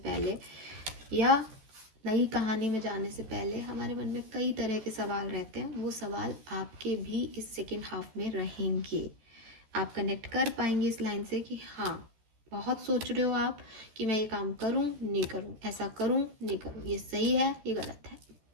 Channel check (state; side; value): late; left; 14 ms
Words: या नई कहानी में जाने से पहले हमारे मन में कई तरह के सवाल रहते हैं। वो सवाल आपके भी इस सेकेंड हाफ में रहेंगे। आप कनेक्ट कर पाएंगे इस लाइन से कि हाँ, बहुत सोच रहे हो आप कि मैं ये काम करूं नहीं करूं, ऐसा करूं नहीं करूं, ये सही है ये गलत है,